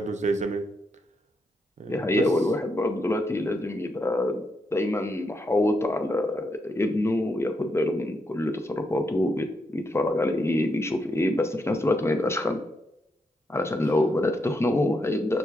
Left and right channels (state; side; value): normal; both; correlation 0.81